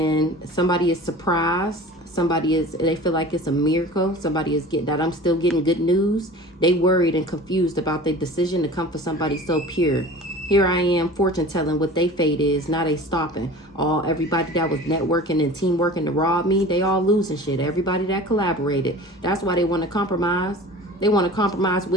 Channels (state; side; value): normal; both; correlation 0.40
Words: somebody is surprised. They feel like it's a miracle. Somebody is getting that I'm still getting good news. They worried and confused about their decision to come for somebody so pure. Here I am, fortune telling what they fate is. Now they stopping. Everybody that was networking and teamworking to rob me, they all losing shit. Everybody that collaborated. That's why they want to compromise. They want to compromise